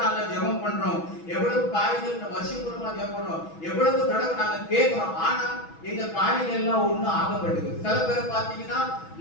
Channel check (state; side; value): late; right; 6.1 ms